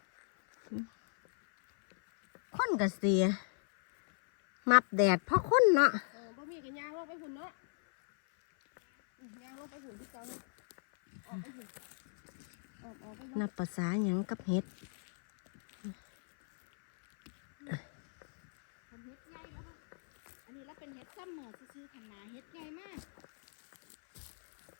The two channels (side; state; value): right; silent; 54 dB below the other